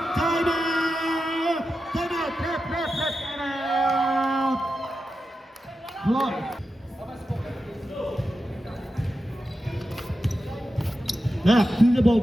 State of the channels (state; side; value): normal; both; correlation 0.90